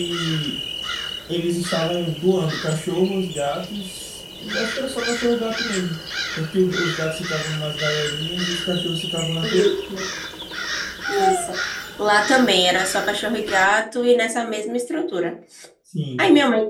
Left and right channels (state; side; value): identical; both; correlation 1.00